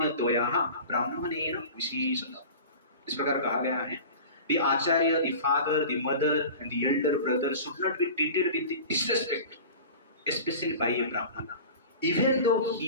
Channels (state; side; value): inverted; both; correlation -0.37